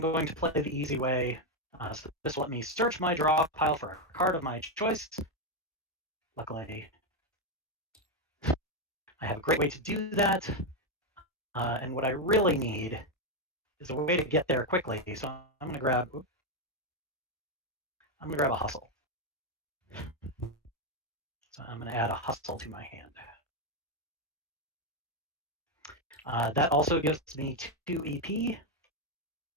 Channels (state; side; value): normal; both; correlation 0.05